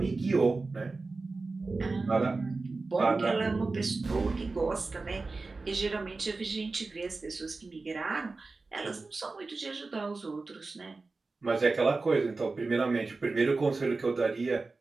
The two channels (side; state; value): left; quieter; 3.7 dB